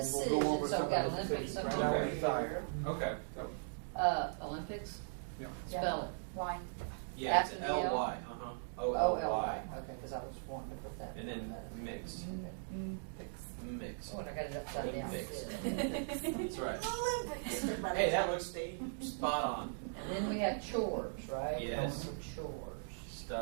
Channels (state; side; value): silent; left; digital silence